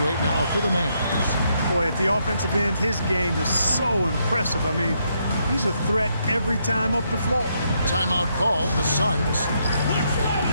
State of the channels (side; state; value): both; inverted; correlation -0.76